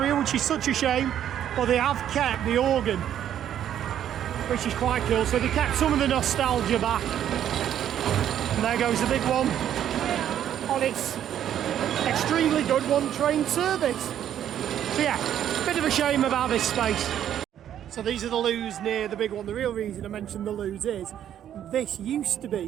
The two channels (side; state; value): left; quieter; 10.4 dB